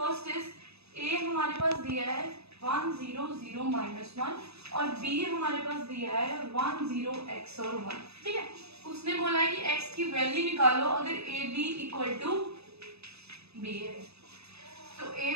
इज, ए हमारे पास दिया है 1 0 0 -1 और बी हमारे पास दिया है 1 0 x और 1, ठीक है। उसने बोला है कि x की वैल्यू निकालो अगर a b equal to b है, तो ए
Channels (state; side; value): late; left; 0.79 ms